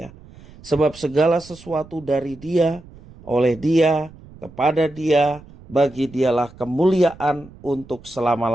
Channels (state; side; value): noise; right; rumble, 21 dB below the sound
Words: Sebab segala sesuatu dari Dia, oleh Dia, kepada Dia, bagi Dialah kemuliaan untuk